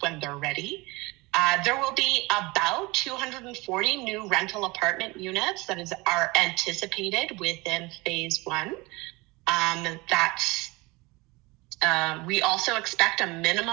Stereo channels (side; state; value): left; quieter; 23.8 dB